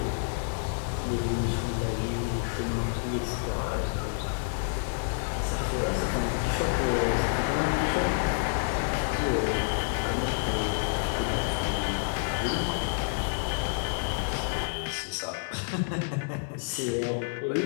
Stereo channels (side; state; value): right; silent; digital silence